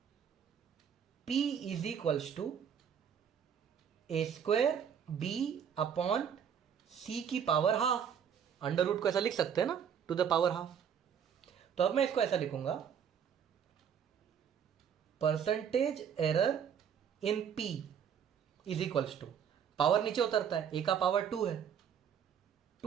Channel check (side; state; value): left; quieter; 8.0 dB